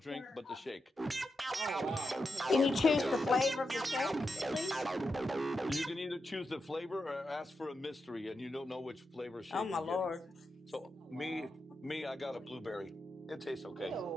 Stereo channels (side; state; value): both; normal; correlation 0.87